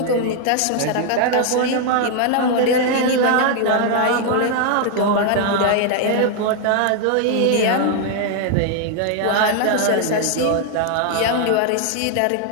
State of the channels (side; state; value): both; different; correlation 0.00